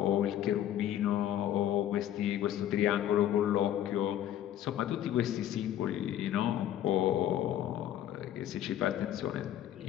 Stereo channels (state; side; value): quieter; right; 11.5 dB